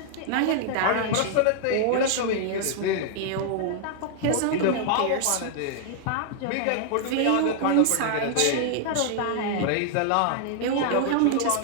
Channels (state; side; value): different; both; correlation 0.00